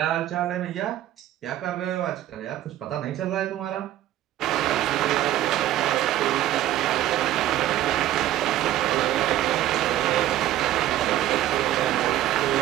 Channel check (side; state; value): left; quieter; 13.4 dB